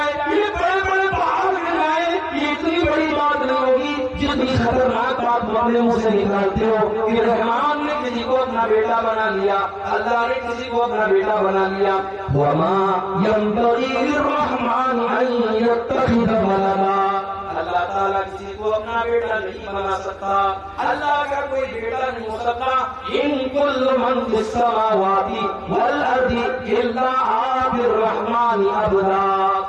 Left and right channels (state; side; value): identical; both; correlation 1.00